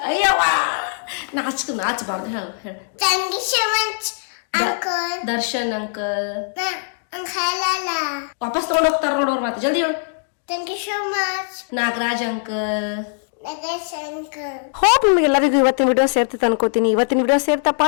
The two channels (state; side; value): silent; right; digital silence